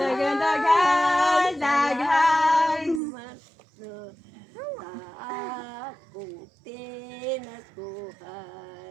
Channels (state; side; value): drops out; left; at 3.0 s